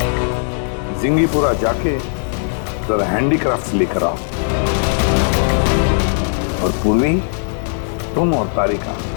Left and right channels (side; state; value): right; silent; digital silence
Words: जिंगीपुरा जाके जरा हैंडीक्राफ्ट लेकर आओ, और पूर्वी, तुम और तारिका